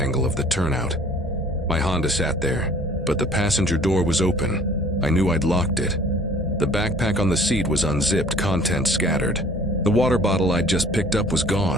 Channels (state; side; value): normal; both; correlation 0.52